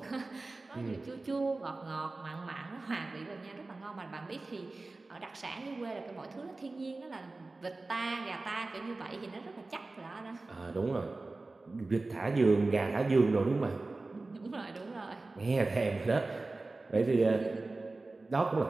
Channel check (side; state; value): left; quieter; 3.3 dB